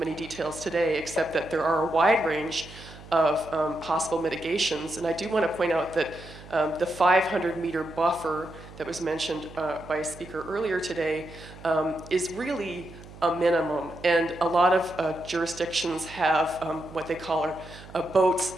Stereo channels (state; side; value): noise; right; hum, 17 dB below the sound